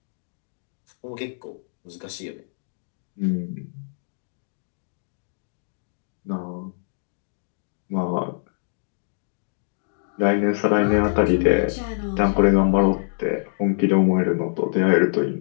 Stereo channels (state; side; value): silent; right; digital silence